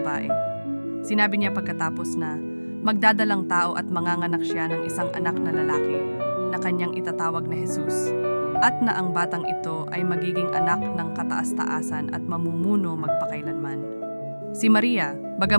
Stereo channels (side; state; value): both; inverted; correlation -1.00